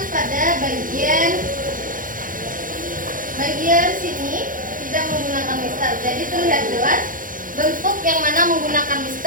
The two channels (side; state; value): left; late; 0.39 ms